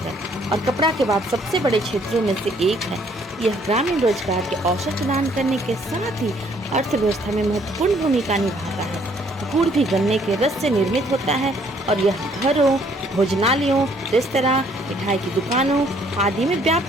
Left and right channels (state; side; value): normal; both; correlation 0.64